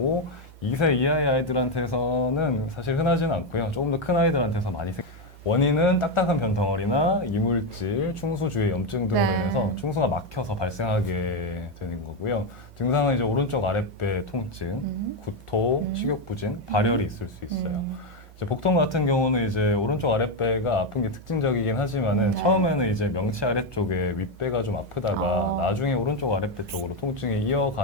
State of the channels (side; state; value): both; normal; correlation 0.06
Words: 2세 이하의 아이들한테서는 사실 흔하지는 않고요. 조금 더 큰 아이들한테서 많이 원인은 딱딱한 변 덩어리나 이물질, 충수 주의 염증 등으로 네. 인해서 충수가 막혀서 발생하게 되는 거고요. 증상은 이제 오른쪽 아랫배 통증, 구토, 식욕부진, 발열이 있을 수 있어요. 이제 복통 같은 경우는 이제 오른쪽 아랫배가 아픈 게 특징적이긴 하지만은 네. 처음에는 이제 명치 아래쪽에 윗배가 좀 아프다가 나중에 오른쪽 아랫배 쪽으로 통증이